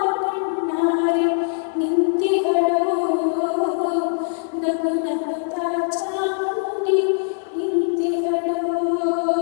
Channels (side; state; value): right; silent; 64 dB below the other